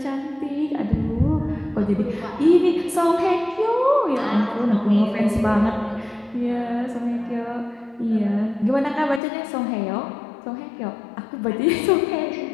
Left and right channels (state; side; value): drops out; right; at 9.2 s